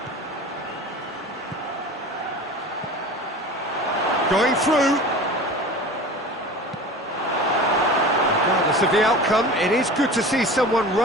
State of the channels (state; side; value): normal; both; correlation 0.36